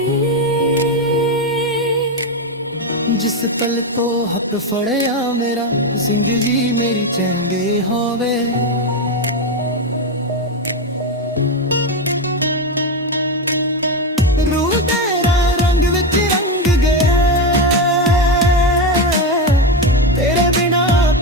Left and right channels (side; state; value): both; normal; correlation 0.12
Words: ਜਿਸ ਪਲ ਤੋਂ ਹੱਥ ਫੜਿਆ ਮੇਰਾ, ਜ਼ਿੰਦਗੀ ਮੇਰੀ ਚੰਗੇ ਹੋਵੇ। ਰੂਹ ਤੇਰਾ ਰੰਗ ਵਿੱਚ ਰੰਗ ਗਿਆ, ਤੇਰੇ ਬਿਨਾ